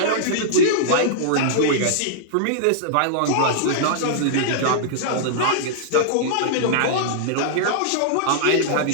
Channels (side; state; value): both; different; correlation -0.01